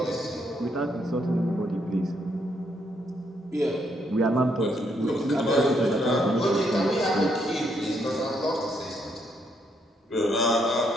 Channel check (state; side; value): normal; both; correlation 0.74